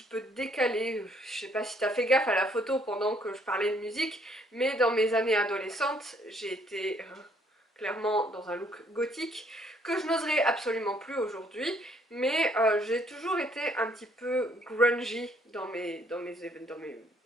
peu décalé, je sais pas si t'as fait gaffe à la photo pendant que je parlais de musique, mais dans mes années adolescentes, j'ai été clairement dans un look gothique, que je n'oserais absolument plus aujourd'hui, mais j'ai toujours été un petit peu grungy dans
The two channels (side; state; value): both; normal; correlation 0.65